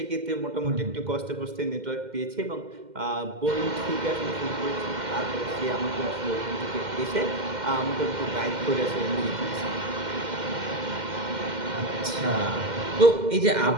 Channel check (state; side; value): late; left; 2.1 ms